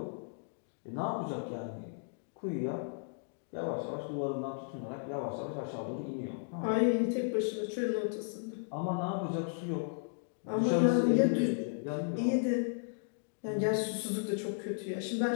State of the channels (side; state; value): right; silent; digital silence